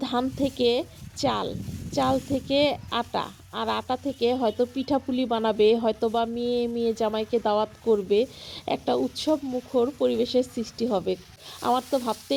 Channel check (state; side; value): identical; both; correlation 1.00